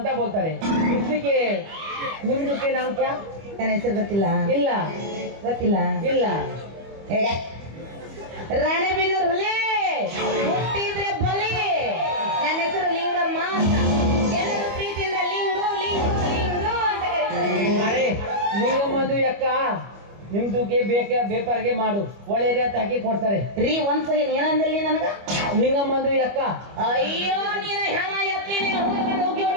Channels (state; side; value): late; left; 25 ms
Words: ಬೋಲ್ತಾರೆ. ಇಸ್ಲಿಕ್ಕೆ ನಿಮ್ದಕ್ಕೆ ನಾಮ್ ಕ್ಯಾ? ನನ್ನ ಹೆಸರು ಗೊತ್ತಿಲ್ಲ. ಇಲ್ಲ ಗೊತ್ತಿಲ್ಲ. ಇಲ್ಲ. ಹೇಗ ರಾಣೆಬೆನ್ನೂರು ಹುಲಿ ಹುಟ್ಟಿದ್ರೆ ಬಲಿ. ನನ್ನ ಹೆಸರು ಲಿಂಗಮ್ಮ ಅಂತ. ಎಲ್ಲರೂ ಪ್ರೀತಿಯಿಂದ ಲಿಂಗು ಲಿಂಗು ಲಿಂಗು ಅಂತ ಕರೀತಾರೆ. ಅರೆ ನಿಂಗಮ್ಮಂದು ಅಕ್ಕ ನಿಮ್ದುಗೆ ಬೇಪಾರಿಗೆ ಮಾಡು, ಒಳ್ಳೆ ರೇಟ್ ಹಾಕಿ ಕೊಡ್ತಾರೆ. ರೀ ಒಂದ್ ಸಲ ಏನಂದಲ್ಲಿ ನನಗ? ನಿಂಗಮ್ಮಂದು ಅಕ್ಕ. ಅಯ್ಯೋ ನೀನ ಹೆಣ ಎತ್ತಿ ನೀನು ಹೋಗಿ